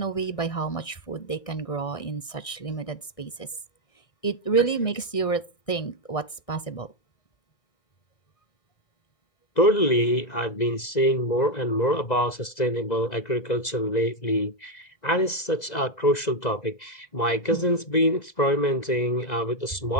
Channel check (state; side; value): late; right; 1.6 ms